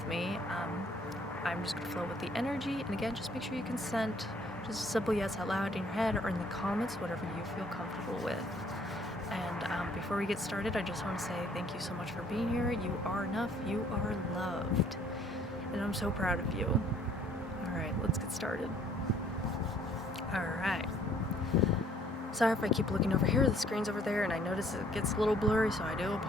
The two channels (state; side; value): normal; both; correlation 0.61